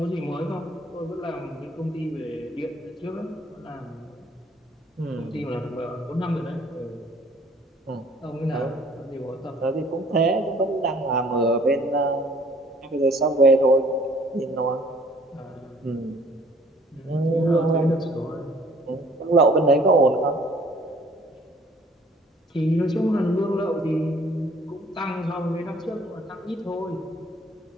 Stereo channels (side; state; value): both; normal; correlation 0.56